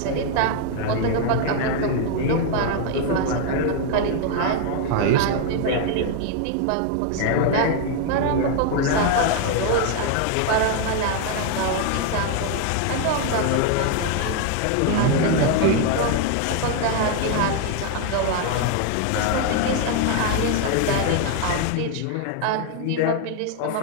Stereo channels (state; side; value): different; both; correlation 0.01